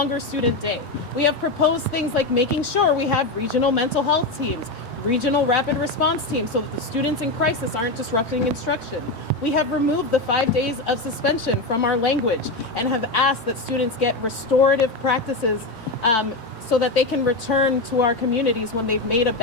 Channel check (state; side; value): quieter; right; 3.0 dB